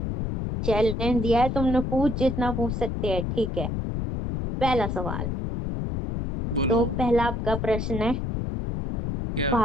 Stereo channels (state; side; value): noise; left; rumble, 3 dB below the sound